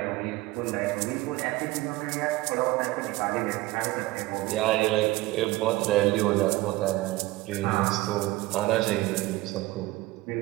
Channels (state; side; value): quieter; left; 18.8 dB